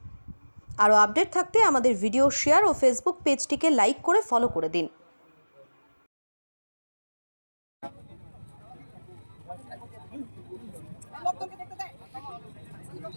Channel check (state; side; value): inverted; both; correlation -1.00